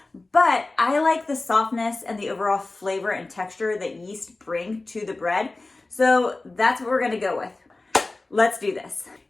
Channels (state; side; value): quieter; right; 3.2 dB